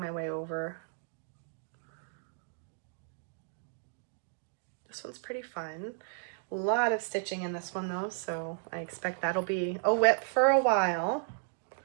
way over. This one's pretty fun. A lot of stitching in this one though, so I expect that'll be a WIP for a while.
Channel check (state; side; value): silent; left; digital silence